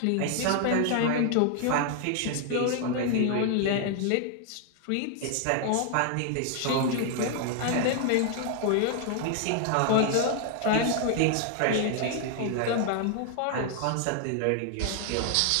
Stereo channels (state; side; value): different; both; correlation 0.00